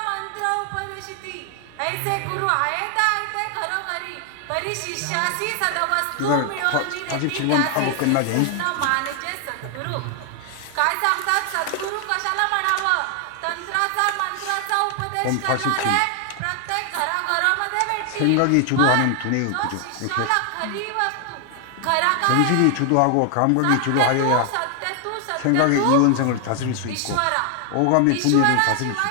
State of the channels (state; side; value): different; both; correlation 0.00